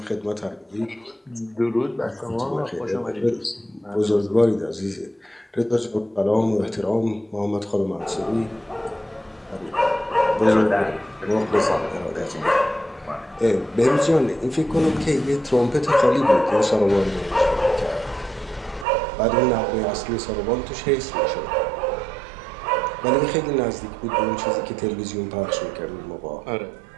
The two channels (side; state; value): left; drops out; at 18.9 s